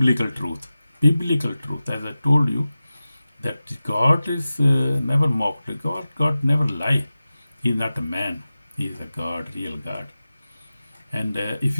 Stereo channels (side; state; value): both; inverted; correlation -0.95